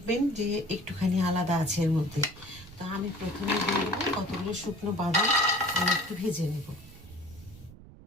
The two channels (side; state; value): right; noise; rumble, 19 dB below the sound